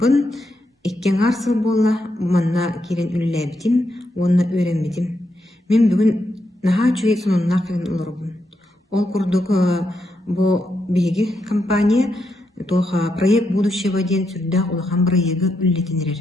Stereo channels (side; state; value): both; normal; correlation 0.82